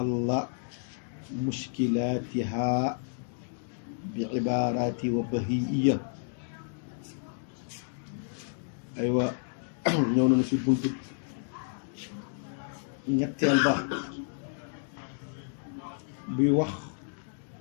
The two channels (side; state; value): right; silent; digital silence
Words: مشكلاتها بعبارات وبهيئية. أيوة ñëw nañu ci buntu ñetteel ba buy wax